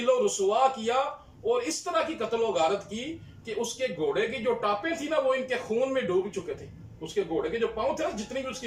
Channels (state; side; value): identical; both; correlation 1.00